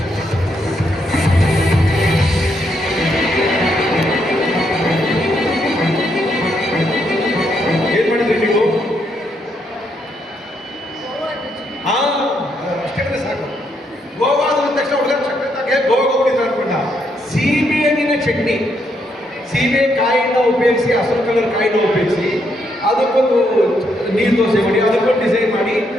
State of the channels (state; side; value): normal; both; correlation 0.76